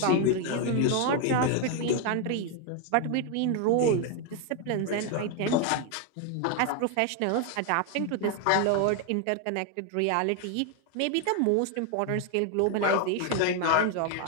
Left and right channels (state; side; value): different; both; correlation 0.01